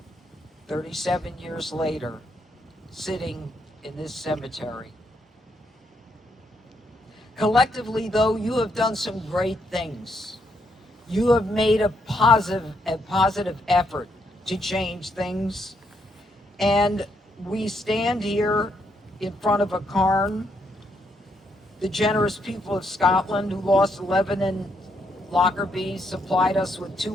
37 years later, sitting in this cemetery. Collectively, though, you have done some great things. You have made a positive effort to change things. And we stand here in front of a cairn. The generous people of Scotland who lost 11 in Lockerbie supplied us with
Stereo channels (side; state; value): both; normal; correlation 0.76